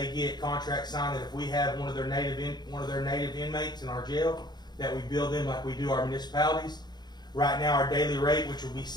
get contract signed that if we have one of their native inmates in our jail, that we bill them like we do our municipalities. Right now, our daily rate, which will be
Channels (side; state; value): right; late; 0.20 ms